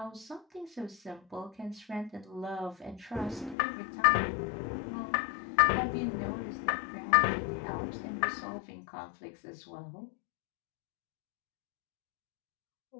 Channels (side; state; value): right; drops out; at 3.6 s